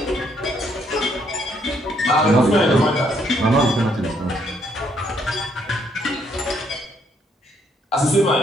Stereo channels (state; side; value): normal; both; correlation 0.71